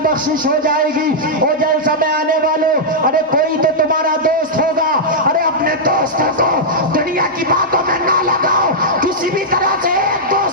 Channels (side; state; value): both; normal; correlation -0.08